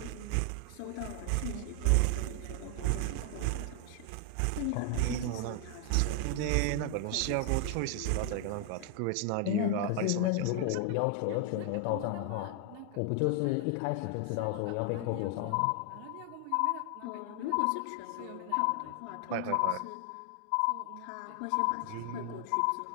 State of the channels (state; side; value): different; both; correlation 0.00